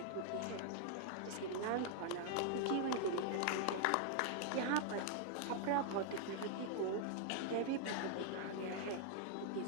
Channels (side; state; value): both; different; correlation -0.01